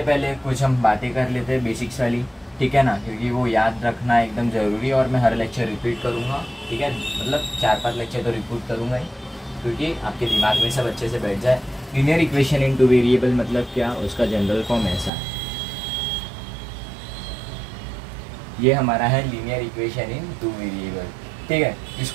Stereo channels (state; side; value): drops out; left; at 15.1 s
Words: पहले कुछ हम बातें कर लेते हैं बेसिक्स वाली। ठीक है ना, क्योंकि वो याद रखना एकदम ज़रूरी है और मैं हर लेक्चर रिपीट करूँगा। ठीक है, मतलब 4-5 लेक्चर तो रिपीट करूँगा ही, क्योंकि आपके दिमाग में सब अच्छे से बैठ जाए। Linear equation in two variable मतलब क्या, उसका जनरल फॉर्म ऐसा है। ये हमारा है लीनियर इक्वेशन इन 2 वेरिएबल। ठीक है,